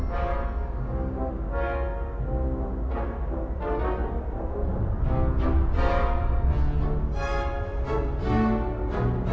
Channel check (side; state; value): both; identical; correlation 1.00